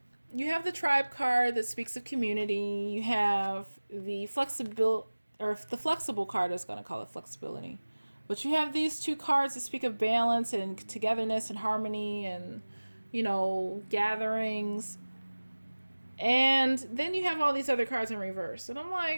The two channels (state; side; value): inverted; both; correlation -1.00